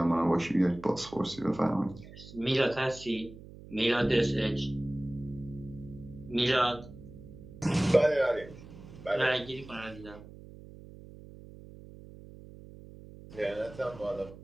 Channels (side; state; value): right; noise; hum, 17 dB below the sound